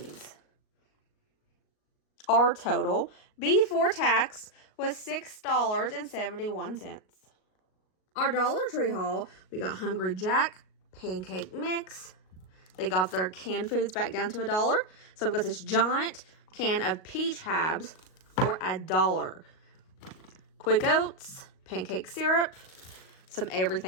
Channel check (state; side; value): late; right; 38 ms